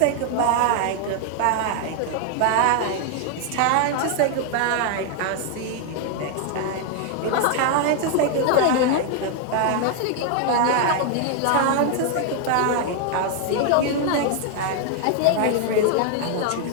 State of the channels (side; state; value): both; different; correlation 0.00